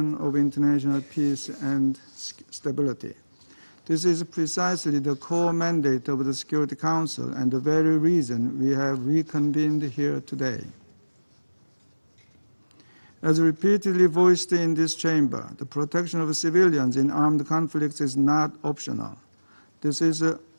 of international peace and stability. This is precisely the core mandate of the Security Council and the very reason we have reconvened here today. As repeatedly voiced in this chamber, the protection of civilians in armed conflicts is not optional. This is a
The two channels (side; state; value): both; inverted; correlation -1.00